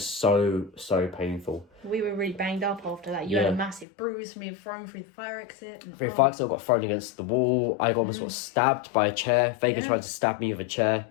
so painful. We were really banged up after that. You had a massive bruise from being thrown through the fire exit. Through the fire exit, I got thrown against the wall. I got sort of stabbed by a chair. Vega tried to stab me with a chair.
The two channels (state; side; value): drops out; right; at 3.9 s